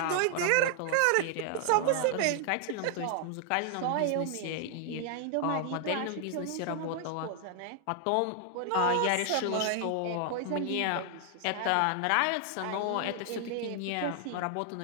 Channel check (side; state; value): both; different; correlation 0.00